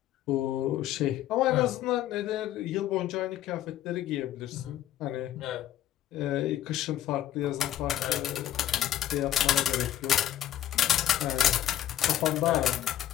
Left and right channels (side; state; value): right; quieter; 11.8 dB